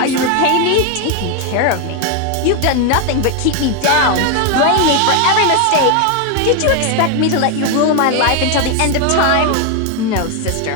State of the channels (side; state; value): both; different; correlation 0.01